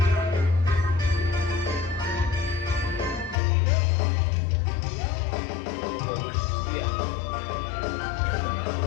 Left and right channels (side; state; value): right; drops out; at 3.4 s